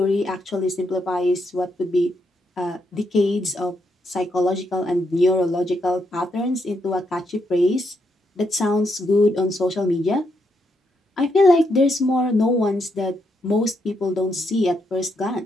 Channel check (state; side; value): normal; both; correlation 0.79